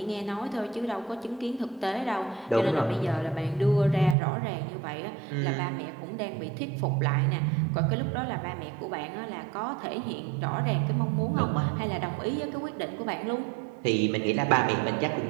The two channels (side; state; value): left; drops out; at 4.2 s